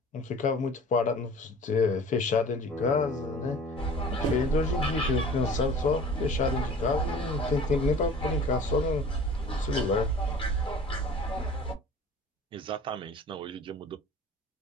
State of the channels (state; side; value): normal; both; correlation 0.45